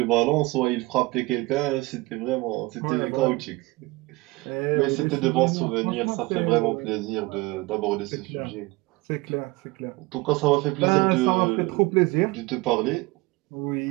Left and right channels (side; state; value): left; quieter; 22.4 dB